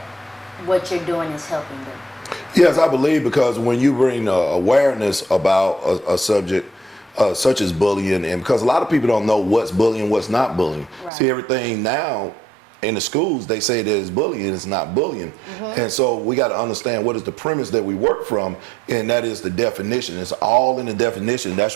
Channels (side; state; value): left; drops out; at 11.1 s